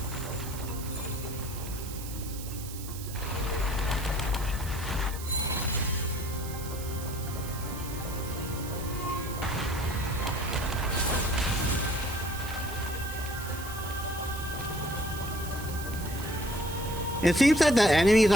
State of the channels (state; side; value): noise; right; hiss, 12 dB below the sound